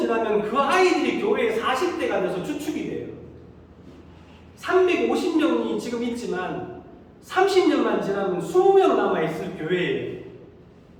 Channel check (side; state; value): both; identical; correlation 1.00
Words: 그 아이들이 교회의 40대가 돼서 주축이 돼요. 350명이 지금 있지만 30년만 지나면 20명 남아있을 교회예요.